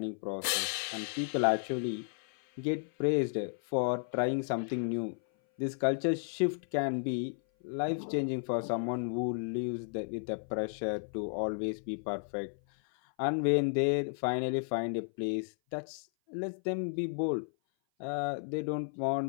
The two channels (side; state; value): right; silent; 56 dB below the other